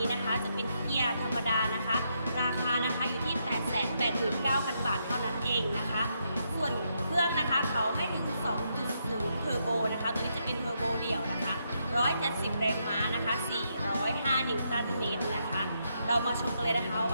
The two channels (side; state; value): both; inverted; correlation -0.79